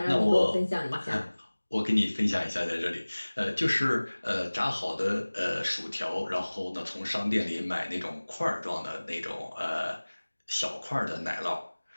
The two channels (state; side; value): inverted; both; correlation -1.00